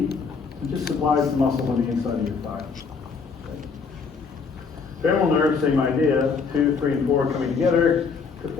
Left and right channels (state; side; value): quieter; right; 5.2 dB